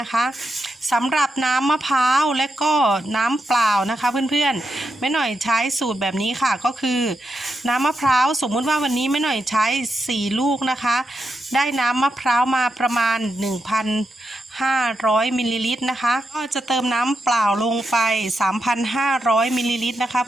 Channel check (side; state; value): both; normal; correlation 0.86